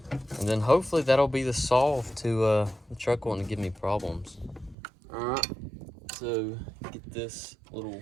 And then hopefully that'll be the solve to the truck wanting to give me problems. Alright, so get this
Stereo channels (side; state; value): left; drops out; at 4.8 s